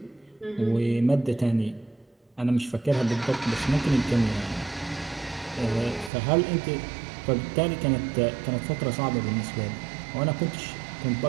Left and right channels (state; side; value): drops out; left; at 6.1 s